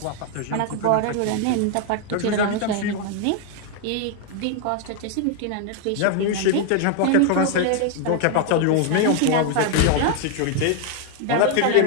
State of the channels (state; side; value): different; both; correlation 0.00